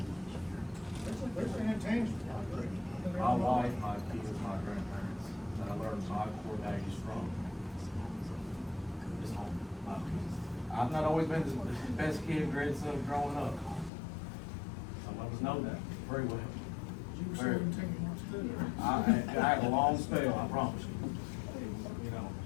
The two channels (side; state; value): right; drops out; at 13.9 s